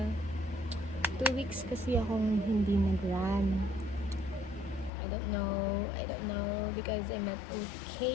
2 weeks kasi akong hindi nag-run. I don't know because I'm not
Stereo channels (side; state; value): right; drops out; at 4.9 s